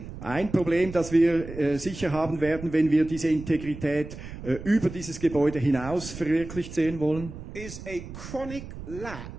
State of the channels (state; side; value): noise; right; rumble, 12 dB below the sound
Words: Ein Problem, das wir sicher haben werden, wenn wir diese Integrität über dieses Gebäude hinaus verwirklicht sehen wollen, is a chronic